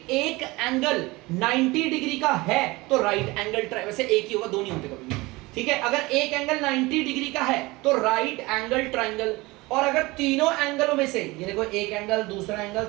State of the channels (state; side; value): quieter; left; 22.1 dB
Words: एक एंगल 90 डिग्री का है तो राइट एंगल वैसे एक ही होगा, दो नहीं होते कभी भी, ठीक है। अगर एक एंगल 90 डिग्री का है तो राइट एंगल ट्राइंगल। और अगर तीनों एंगलों में से, ये देखो एक एंगल, दूसरा एंगल,